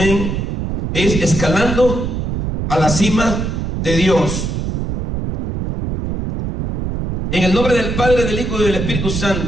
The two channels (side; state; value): right; noise; rumble, 3 dB below the sound